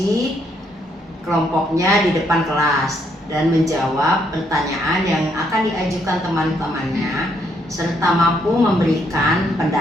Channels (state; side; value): normal; both; correlation 0.73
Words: kelompoknya di depan kelas dan menjawab pertanyaan yang akan diajukan teman-temannya serta mampu memberikan